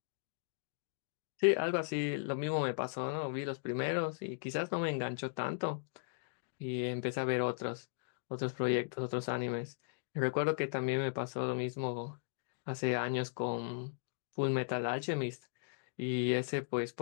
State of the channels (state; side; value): silent; right; digital silence